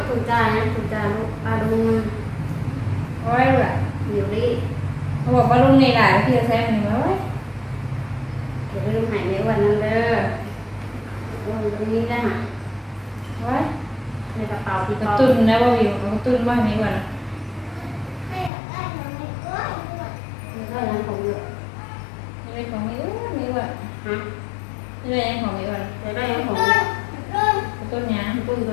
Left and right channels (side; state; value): right; drops out; at 18.5 s